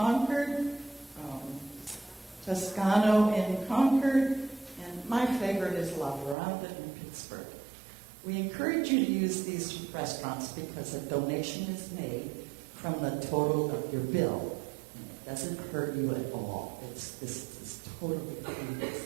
Toscano in Concord, and my favorite is La Veranda in Pittsburgh. We encourage you to use these restaurants because a donation is made from the total of your bill. And it doesn't hurt you at all. This is totally free.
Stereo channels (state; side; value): drops out; left; at 6.4 s